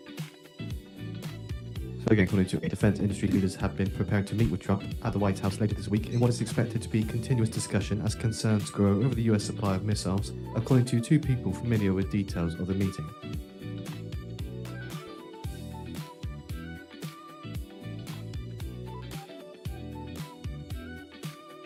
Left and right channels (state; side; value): identical; both; correlation 1.00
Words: Again, according to defense industry leaders have been preparing to meet with Trump at the White House later this week in what is expected to be continuous discussion as concerns grow over the US supply of missiles, according to two people familiar with details of the meeting.